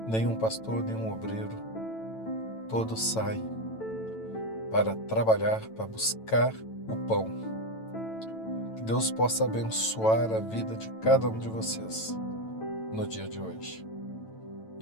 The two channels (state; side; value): late; right; 9.0 ms